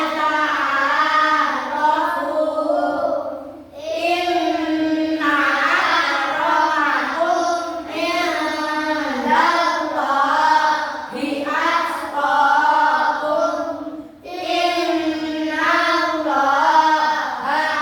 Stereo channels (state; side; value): identical; both; correlation 1.00